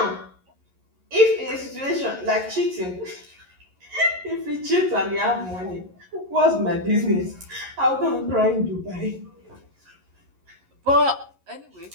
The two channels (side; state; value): left; late; 11 ms